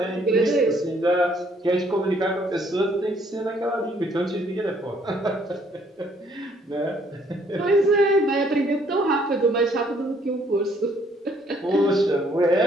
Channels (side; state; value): both; normal; correlation 0.65